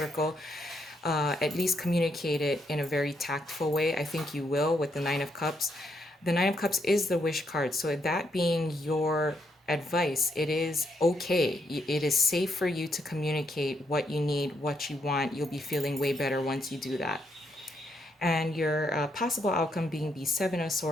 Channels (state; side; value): normal; both; correlation 0.76